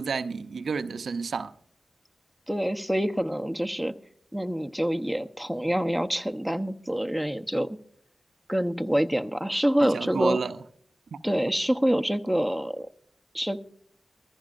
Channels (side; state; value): both; normal; correlation 0.98